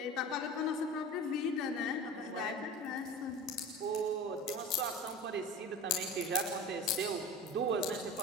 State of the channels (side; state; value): both; normal; correlation 0.34